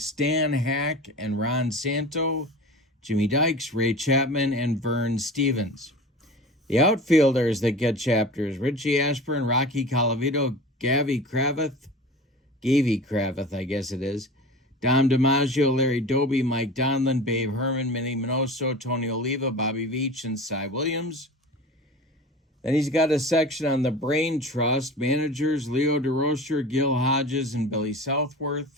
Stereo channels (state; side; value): normal; both; correlation 0.36